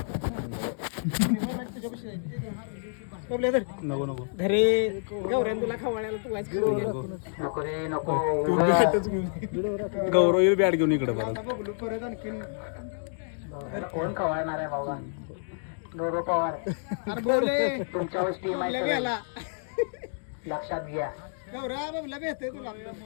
नको घरी गौऱ्यान तुला खवळ्याला तू वाच नको रे नको. गौरव बॅट घेऊन इकडे परत आणखीन कोण खवळणार आहे बाबा. गौरव पवार तुमच्यावर टीम आहे लक्षात घ्या. गौऱ्या बाबला भेटते तुला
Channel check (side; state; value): right; silent; digital silence